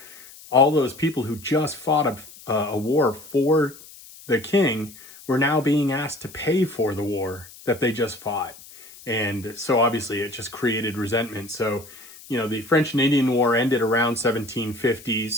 All those people who just fought a war for the king were now being asked to pay for the war that they just fought. And so obviously it just created resentment. So, you know, the French and Indian War ended around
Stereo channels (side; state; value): left; noise; hiss, 20 dB below the sound